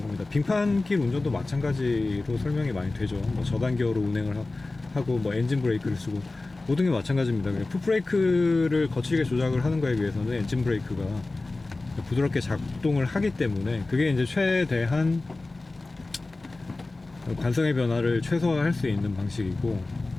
겁니다. 빙판길 운전도 마찬가지로 설명이 많이 되죠. 뭐 저단계어로 운행을 하고 뭐 엔진 브레이크를 쓰고 모든 게 마찬가지입니다. 풋브레이크를 거칠게 조작을 하는 거에 비해서는 엔진 브레이크가 부드럽게 작동을 하기 때문에 그게 이제 최대한 관성의 변화를 최소화할 수 있는 방식이고,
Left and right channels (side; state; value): right; quieter; 3.2 dB